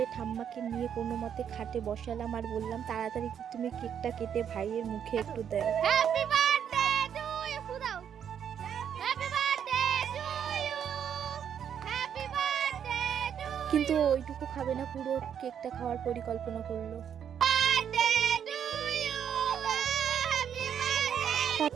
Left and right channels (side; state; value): left; quieter; 8.6 dB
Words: ঠাম্মাকে নিয়ে কোনো মতে খাটে বসালাম আর বললাম, তাড়াতাড়ি তুমি কেকটা কেটে ভাইয়ের মুখে একটু দাও। হ্যাপি বার্থডে টু ইউ ফুদাও। Happy birthday to you. Happy birthday to. কিন্তু ওইটুকু খাবে না, পুরো কেকটা খাওয়ার পরিকল্পনা করলো। Birthday to you. Happy birthday.